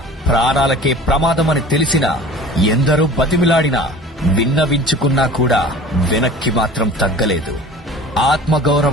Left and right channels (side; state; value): both; normal; correlation 0.42